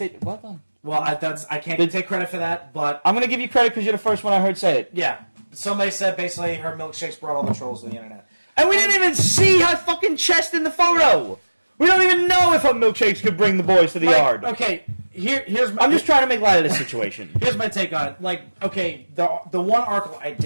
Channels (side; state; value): both; inverted; correlation -1.00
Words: Well done. Well, I can't take credit for that, but I'm gonna give you credit because you're the first one I heard say it. yeah, somebody said basically her milkshakes brought all the trolls to the internet. And we didn't even see her fucking chest in the photo. We don't even know if her milkshakes could bring the boys to the yard. Okay, here's my. I'm just trying to make light of this situation. Here's my take on it. Like, okay, the one article I